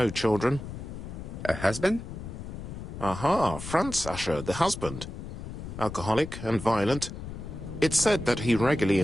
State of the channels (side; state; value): left; noise; rumble, 9 dB below the sound